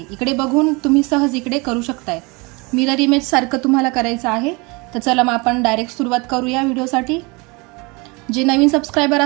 इकडे बघून तुम्ही सहज इकडे करू शकताय। मिरर इमेज सारखं तुम्हाला करायचं आहे। तर चला मग आपण डायरेक्ट सुरुवात करूया व्हिडिओसाठी। जे नवीन सबस्क्राइबर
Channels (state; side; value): quieter; left; 27.3 dB